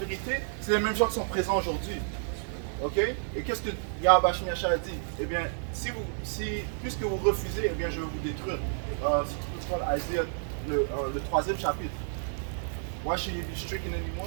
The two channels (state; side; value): silent; left; 58 dB below the other